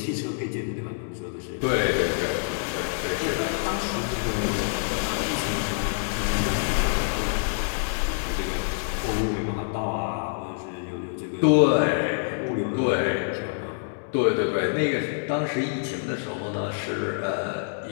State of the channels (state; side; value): silent; right; digital silence